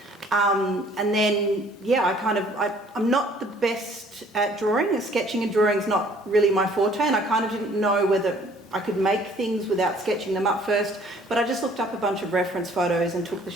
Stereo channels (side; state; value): both; normal; correlation 0.57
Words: And then, I'm not the best at drawing. Sketching and drawing is not really my forte, and I kind of didn't know whether I could make things without sketching them up first, but I just looked up a bunch of reference photos and took the